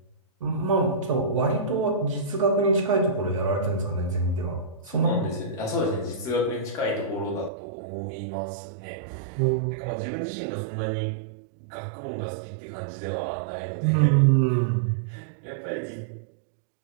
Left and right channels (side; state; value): left; drops out; at 7.5 s